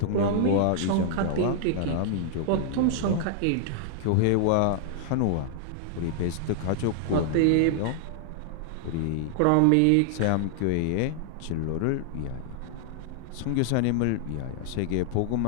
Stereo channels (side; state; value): both; different; correlation 0.00